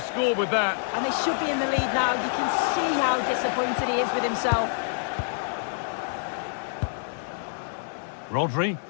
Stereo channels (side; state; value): right; silent; digital silence